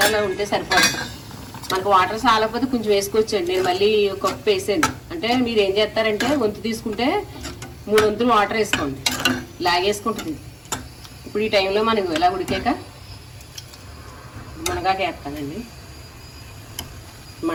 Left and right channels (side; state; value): both; identical; correlation 1.00